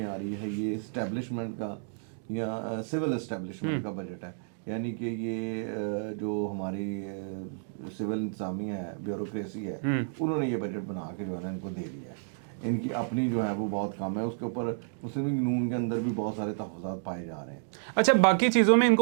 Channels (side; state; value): left; silent; digital silence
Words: آ رہی ہے یہ اسٹیبلشمنٹ کا یا سول اسٹیبلشمنٹ کا بجٹ ہے, یعنی کہ یہ جو ہماری سول انتظامیہ ہے, بیوروکریسی ہے, انہوں نے یہ بجٹ بنا کے جو ہے نا ان کو دے دیا ہے. ان کی اپنی جو ہے وہ بہت کم ہے, اس کے اوپر مسلم لیگ نون کے اندر بھی بہت سارے تحفظات پائے جا رہے ہیں. اچھا باقی چیزوں میں ان